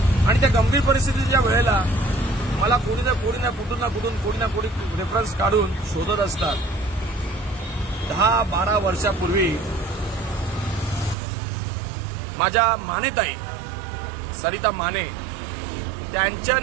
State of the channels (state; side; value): drops out; left; at 11.2 s